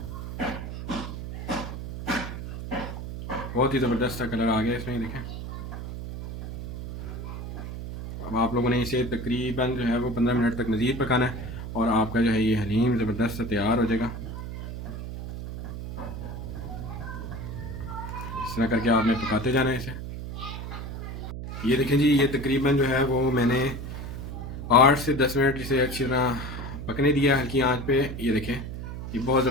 बहुत ही ज़बरदस्त सा कलर आ गया इसमें, देखें। अब आप लोगों ने इसे तकरीबन जो है वो 15 मिनट तक मज़ीद पकाना है और आपका जो है ये हलीम ज़बरदस्त सा तैयार हो जाएगा। इस तरह करके आपने पकाते जाना है इसे। ये देखें जी, ये तकरीबन जो है वो मैंने 8 से 10 मिनट इसे अच्छी तरह पकने दिया हल्की आंच पे। ये देखें ये बहुत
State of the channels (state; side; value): noise; right; hum, 8 dB below the sound